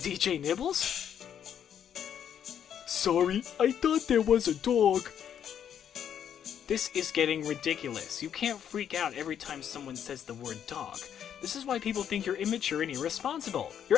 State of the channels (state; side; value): quieter; right; 9.1 dB